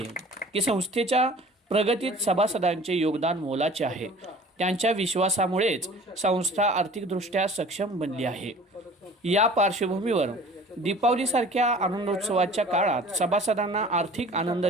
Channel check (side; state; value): both; normal; correlation 0.46